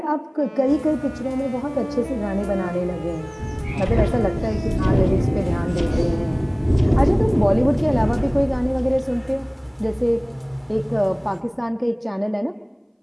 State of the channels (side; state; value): both; identical; correlation 1.00